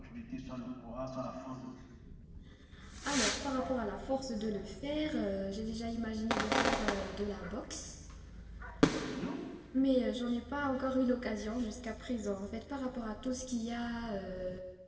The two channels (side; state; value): both; identical; correlation 1.00